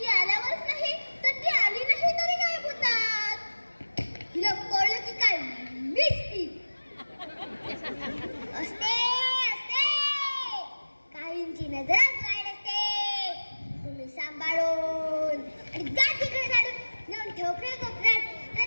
आल्यावरच नाही तर ती आली नाही तरी गायब होतात. तिला कळलं की काय मिस्टी असते असते काहींची नजरच वाईट असते. तुम्ही सांभाळून आणि गाठीकडे काढून नेऊन ठोकरे कोपऱ्यात नाही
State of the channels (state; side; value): inverted; both; correlation -1.00